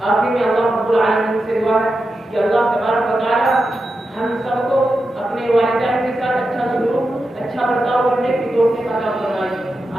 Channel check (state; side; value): normal; both; correlation 0.89